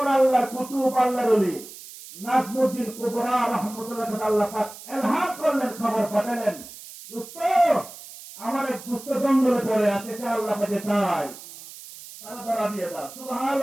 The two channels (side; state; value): right; noise; hiss, 16 dB below the sound